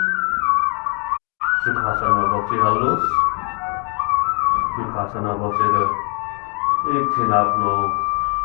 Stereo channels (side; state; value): right; quieter; 35.5 dB